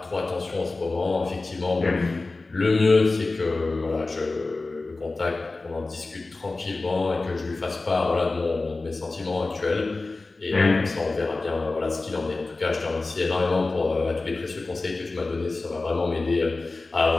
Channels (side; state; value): right; quieter; 3.4 dB